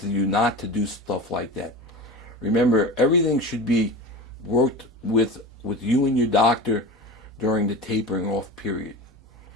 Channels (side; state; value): both; normal; correlation 0.30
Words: you not to do stuff like that. Remember, everything should be worked with you and your doctor during the tapering off period.